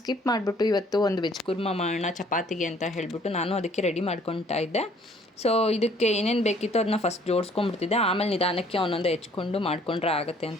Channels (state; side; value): normal; both; correlation 0.59